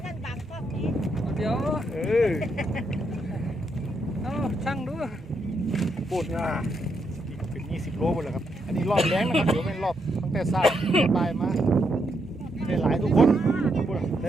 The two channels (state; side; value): normal; both; correlation 0.79